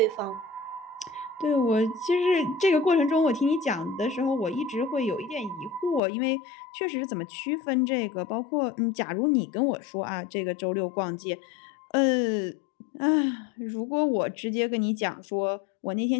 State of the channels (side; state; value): right; drops out; at 6.0 s